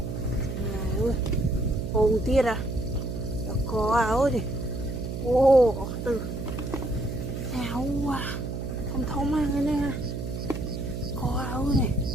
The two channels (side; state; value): right; noise; hum, 5 dB below the sound